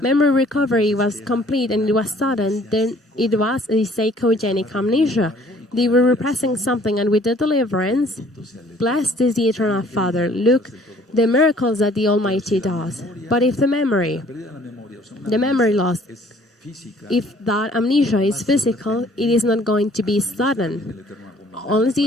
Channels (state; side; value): normal; both; correlation 0.57